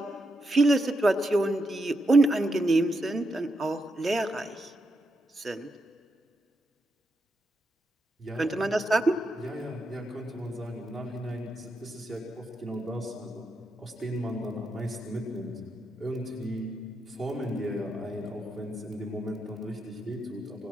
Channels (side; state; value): both; normal; correlation 0.83